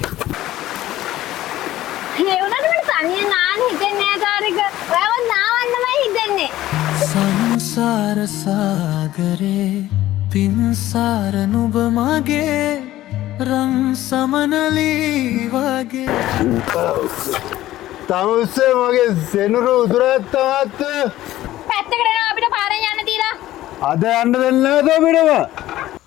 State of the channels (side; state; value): right; quieter; 14.8 dB